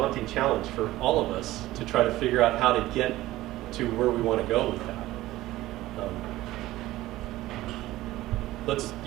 challenge for all of us to try to figure out how to get to where we want to go with that. Let's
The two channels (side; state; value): left; quieter; 16.6 dB